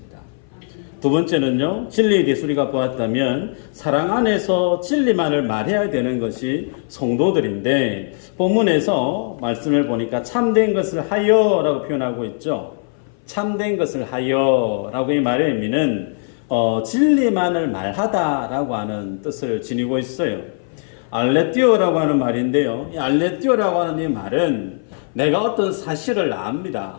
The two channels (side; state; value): right; silent; 59 dB below the other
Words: 두 번째는요, 진리에 대해서 우리가 보았다면 사랑 안에서 진리만을 말해야 되는 것이 성도들인데, 본문에서 말씀을 보니까 참된 것을 하여라고 표현하고 있죠. 참된 것을 하여라고 이 말의 의미는 진리만을 말하다라고 하는 뜻을 지니고 있어요. 알레티오라고 하는 말인데요, 이 알레티오라고 하는 이 말은 내가 어떤 사실을